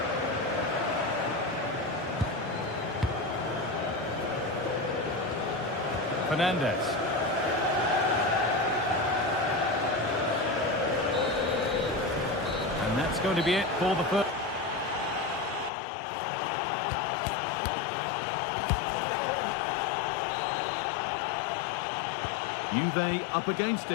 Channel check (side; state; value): right; drops out; at 15.7 s